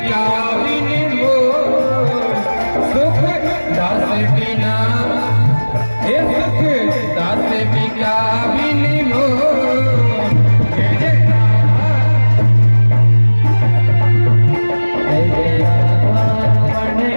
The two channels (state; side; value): inverted; both; correlation -1.00